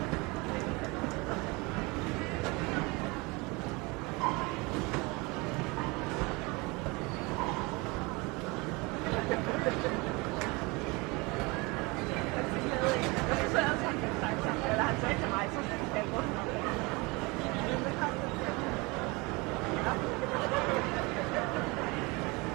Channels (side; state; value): left; quieter; 26.0 dB